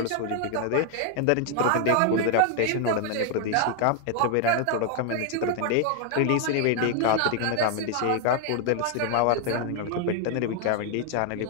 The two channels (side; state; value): both; different; correlation 0.00